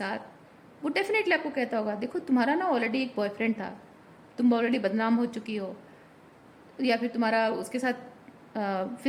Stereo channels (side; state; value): both; identical; correlation 1.00